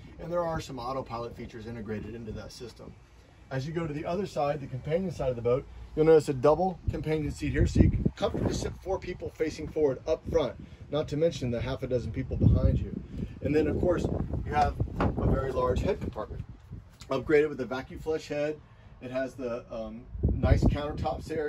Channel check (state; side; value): identical; both; correlation 1.00